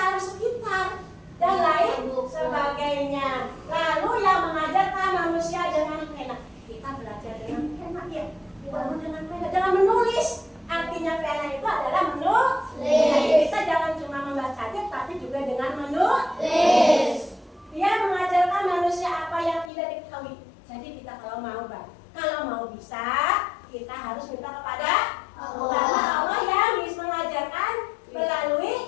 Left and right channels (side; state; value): right; drops out; at 19.7 s